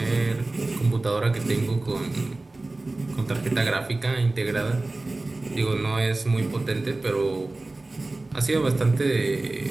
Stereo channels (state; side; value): quieter; left; 3.0 dB